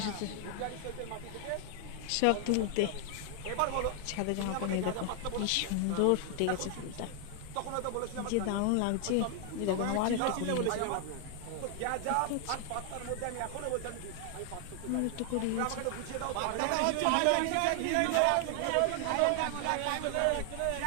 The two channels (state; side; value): different; both; correlation 0.00